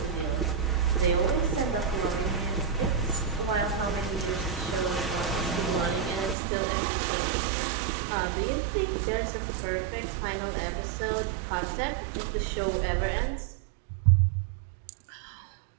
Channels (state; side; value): drops out; left; at 6.4 s